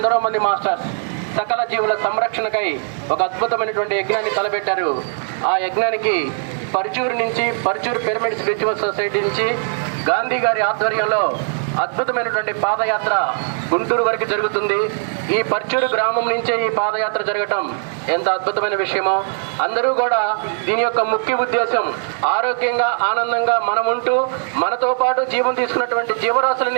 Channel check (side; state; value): left; silent; 60 dB below the other